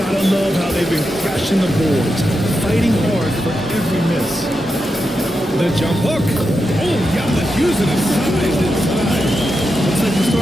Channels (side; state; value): both; normal; correlation 0.87